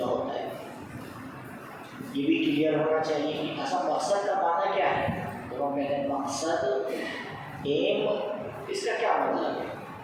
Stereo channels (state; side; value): identical; both; correlation 1.00